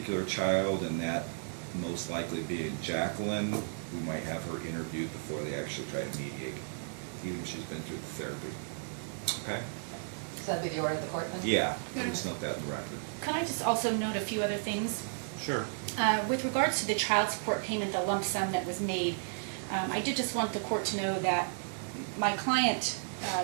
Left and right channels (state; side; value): silent; left; digital silence